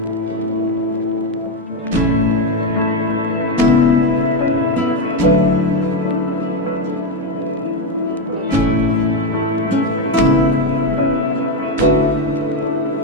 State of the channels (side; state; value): both; normal; correlation 0.08